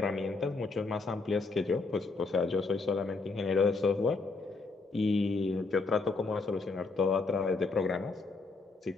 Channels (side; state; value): right; quieter; 3.9 dB